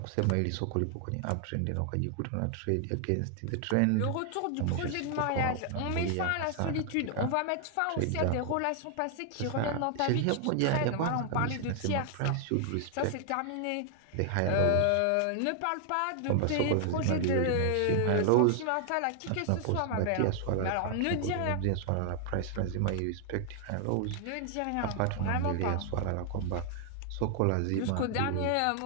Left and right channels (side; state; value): both; different; correlation 0.00